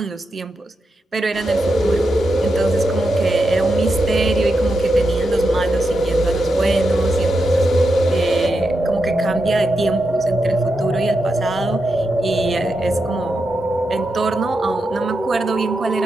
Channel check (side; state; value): both; normal; correlation 0.86